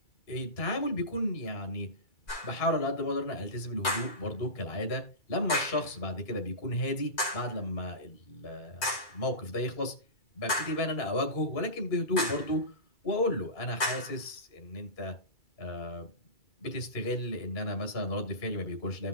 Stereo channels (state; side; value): late; right; 2.3 ms